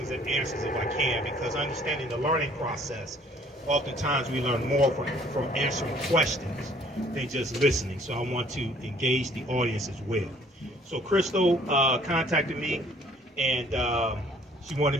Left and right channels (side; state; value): both; normal; correlation 0.58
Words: and answers if I can, because understanding the learning process, oftentimes we learn more from answering questions than just listening. So I want to engage the audience as well. So Crystal contacted me, and she